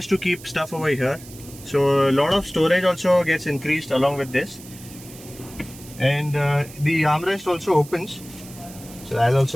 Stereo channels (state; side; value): noise; right; hiss, 18 dB below the sound